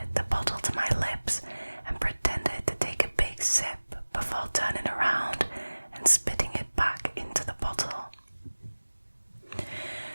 the bottle to my lips and pretended to take a big sip before turning around and spitting it back into the bottle.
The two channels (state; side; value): inverted; both; correlation -1.00